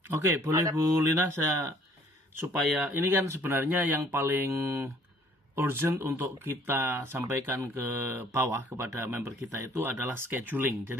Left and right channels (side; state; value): both; normal; correlation 0.58